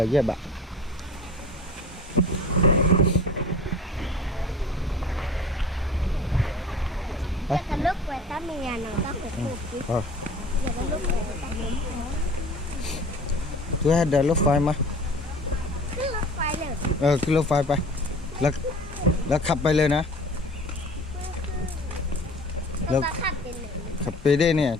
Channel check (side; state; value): both; normal; correlation 0.42